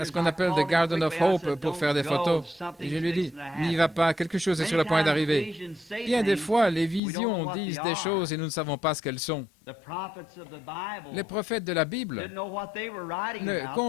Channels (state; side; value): drops out; right; at 7.0 s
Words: ce qu'on appelle The Garden of Hope pour faire des photos. Et je lui dis, n'y va pas, quelque chose est sur le point d'arriver. Bien des fois, les visions disent des choses et nous ne savons pas ce qu'elles sont. Les prophètes de la Bible ne